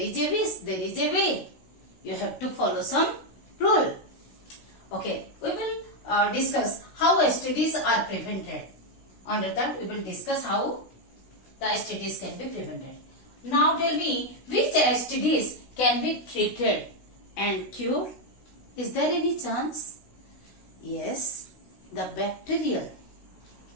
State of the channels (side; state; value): right; late; 16 ms